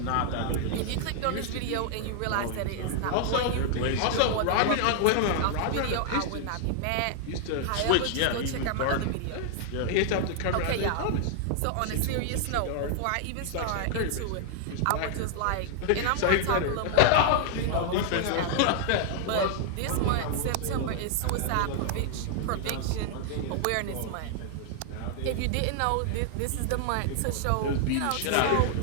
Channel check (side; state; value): both; different; correlation 0.00